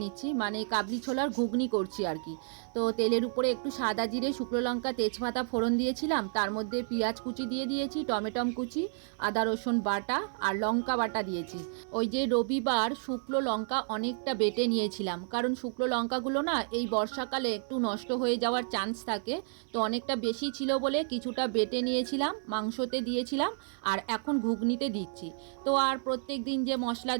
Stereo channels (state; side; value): silent; left; 57 dB below the other